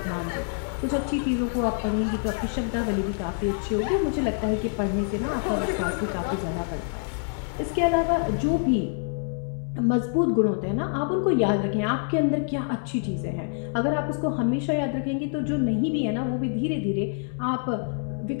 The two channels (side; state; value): right; silent; 61 dB below the other